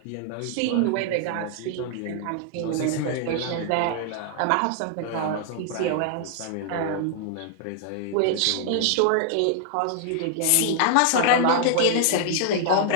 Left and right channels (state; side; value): different; both; correlation -0.01